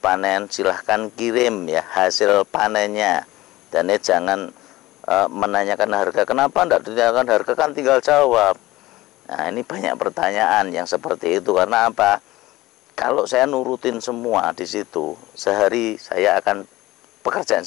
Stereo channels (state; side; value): quieter; right; 18.1 dB